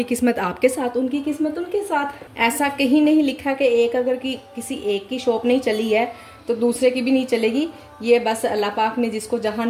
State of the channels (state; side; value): identical; both; correlation 1.00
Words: किस्मत आपके साथ, उनकी किस्मत उनके साथ। ऐसा कहीं नहीं लिखा कि एक अगर किसी एक की शॉप नहीं चली है तो दूसरे की भी नहीं चलेगी। ये बस अल्लाह पाक ने जिसको जहाँ